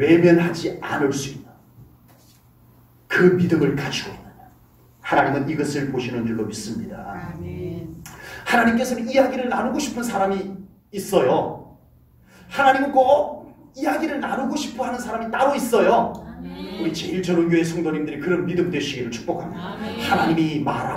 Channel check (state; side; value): identical; both; correlation 1.00